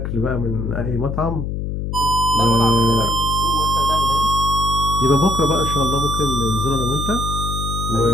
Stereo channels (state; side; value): noise; left; hum, 3 dB below the sound